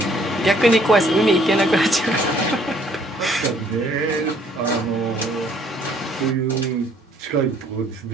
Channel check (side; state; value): both; normal; correlation 0.62